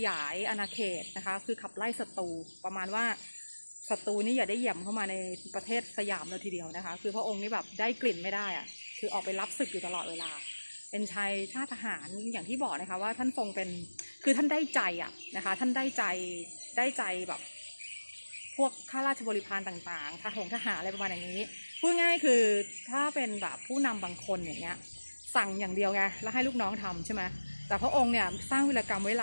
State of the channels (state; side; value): inverted; both; correlation -1.00